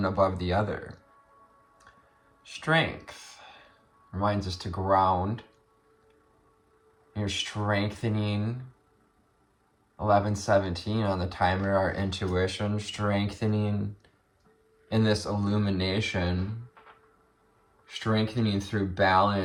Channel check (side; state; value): both; identical; correlation 1.00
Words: above the other. Strength reminds us to ground. You're strengthening 11:17 on the timer, our intuition, strengthening in this illumination, strengthening through